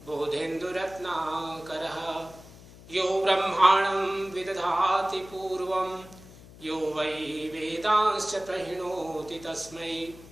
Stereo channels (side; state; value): left; noise; hum, 20 dB below the sound